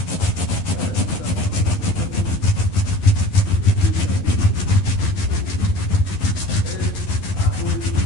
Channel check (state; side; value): late; right; 11 ms